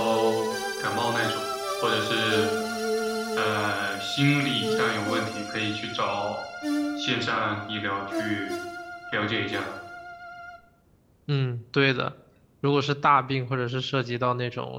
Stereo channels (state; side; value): identical; both; correlation 1.00